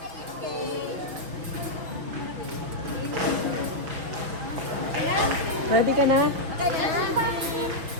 Ready ka na?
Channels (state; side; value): late; left; 6.2 ms